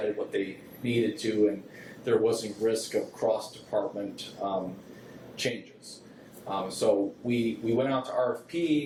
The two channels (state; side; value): identical; both; correlation 1.00